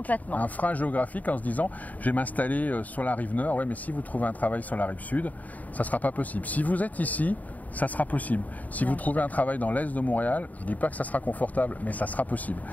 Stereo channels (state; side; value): late; right; 0.075 ms